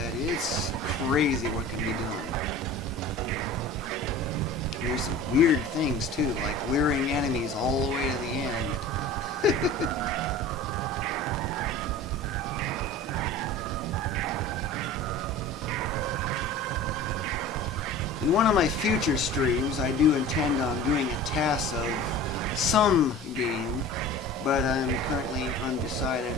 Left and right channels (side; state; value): both; normal; correlation 0.39